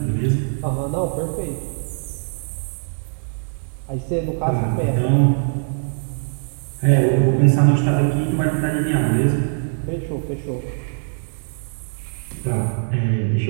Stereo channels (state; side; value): silent; left; 64 dB below the other